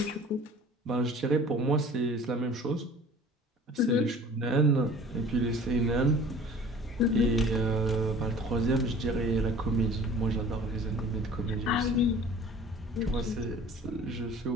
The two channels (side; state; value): both; normal; correlation 0.46